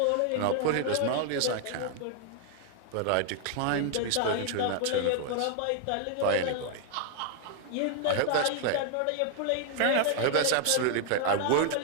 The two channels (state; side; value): different; both; correlation 0.00